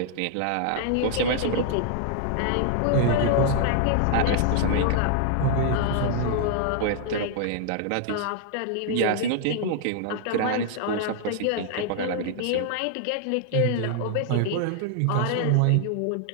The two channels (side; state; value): both; different; correlation -0.01